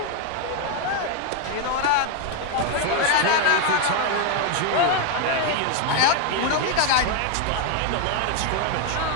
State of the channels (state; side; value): different; both; correlation 0.01